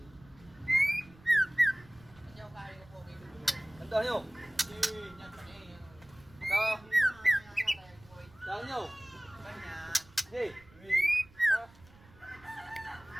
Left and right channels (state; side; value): noise; right; rumble, 24 dB below the sound